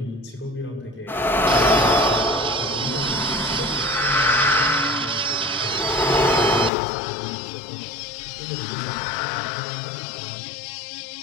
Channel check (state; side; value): drops out; right; at 6.7 s